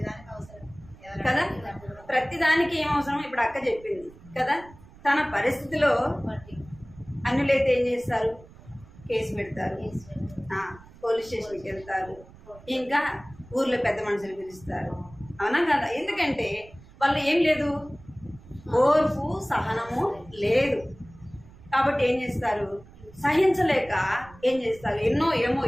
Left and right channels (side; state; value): right; noise; rumble, 22 dB below the sound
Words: కదా. ప్రతిదానికి ఏం అవసరం ఇప్పుడు అక్క చెప్పింది కదా. తన పరిస్థితిలో అన్యులైతే ఏం చేస్తారు, కేసు పెడతారు, పోలీస్ స్టేషన్కి వెళ్తారు, ఇంకా ఊర్లో పెద్ద మనుషులు పిలుస్తారు, అవునా కదా. ఎందుకంటే వాళ్ళు ఏం లేదు, ఓర్పు సహనము లేదు. కాబట్టి ఏం చేస్తారు, సహించలేక ఏం చేస్తారు,